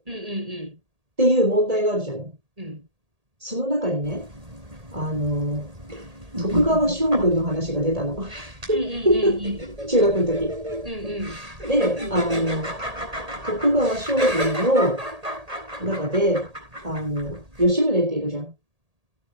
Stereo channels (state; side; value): late; left; 1.8 ms